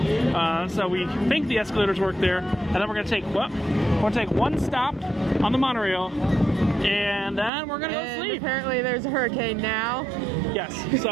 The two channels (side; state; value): left; drops out; at 7.5 s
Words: so we think the escalators work there, and then we're gonna take one stop on the monorail. And then we're gonna go sleep. Apparently there's a hurricane now. Yes,